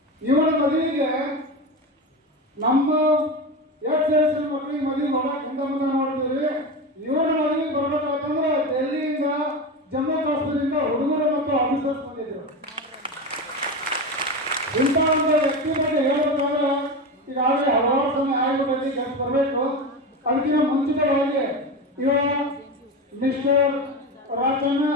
ಇವರ ಮದುವೆಗೆ ನಮ್ಮ ಎಕ್ಸ್ ಮಕ್ಕಳಿಗೆ ಮದುವೆ ಮಾಡಕ್ಕೆ ಹಿಂದೆ ಮುಂದೆ ಮಾಡ್ತೀವಿ. ಇವರ ಮದುವೆಗೆ ಬರ್ಬೇಕಾಯ್ತಂದ್ರೆ ಡೆಲ್ಲಿಯಿಂದ, ಜಮ್ಮು ಕಾಶ್ಮೀರದಿಂದ ಹುಡುಗರು ಮತ್ತು ಆಫೀಸರ್ಸ್ ಬಂದಿದ್ರು. ಇಂಥ ಒಂದು ವ್ಯಕ್ತಿ ಬಗ್ಗೆ ಹೇಳಬೇಕಾದ್ರೆ ಈಗಾಗಲೇ ಹಲವಾರು ಸಮಯ ಆಯೋಗದಲ್ಲಿ ಕೆಲಸ ಬರಬೇಕು. ಅದಕ್ಕಿಂತ ಮುಂಚಿತವಾಗಿ ಇವ ಮಿಸ್ಟರ್ ರಾಜಣ್ಣ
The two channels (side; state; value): both; normal; correlation 0.22